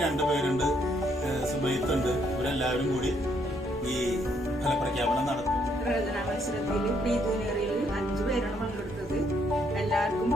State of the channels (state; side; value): normal; both; correlation 0.71